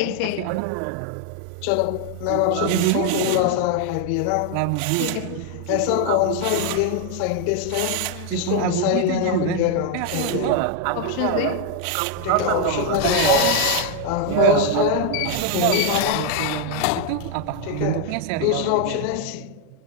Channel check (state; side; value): different; both; correlation 0.01